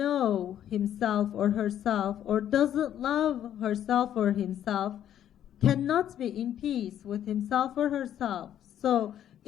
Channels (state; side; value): quieter; right; 10.7 dB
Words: himself or herself or doesn't love herself or himself cannot be in peace with himself or herself. So